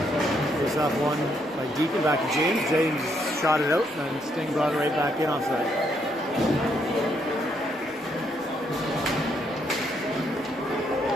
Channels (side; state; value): both; normal; correlation 0.74